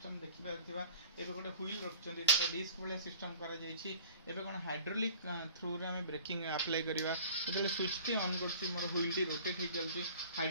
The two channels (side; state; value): both; inverted; correlation -0.46